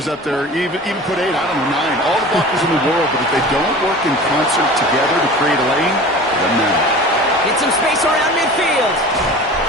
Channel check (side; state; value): both; normal; correlation 0.38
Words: up there, even put 8, I don't know, 9. All the blockers in the world, but if they don't work in concert together to create a lane, it doesn't matter. Get some space around midfield.